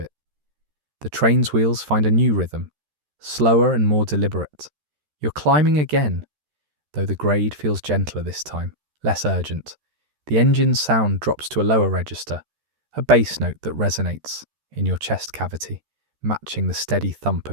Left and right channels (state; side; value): late; left; 13 ms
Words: The train's wheels find a new rhythm, slower and more deliberate. You're climbing again, though the grade feels gentler this time, less urgent. The engine's sound drops to a lower register, a bass note that resonates in your chest cavity, matching the steady thump